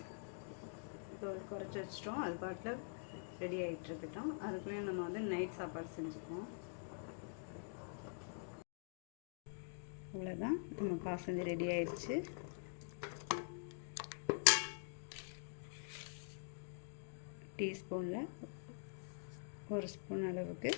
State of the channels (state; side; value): silent; right; digital silence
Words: இப்போ குறைச்சி வச்சிட்டோம். அது பாட்டில் ரெடி ஆகிட்டு இருக்கட்டும். அதுக்குள்ளேயும் நம்ம வந்து நைட் சாப்பாடு செஞ்சுக்குவோம். அவ்வளோதான், நம்ம பாசந்தி ரெடி ஆயிடுச்சு. டீஸ்பூனில் 1 ஸ்பூன் அளவுக்கு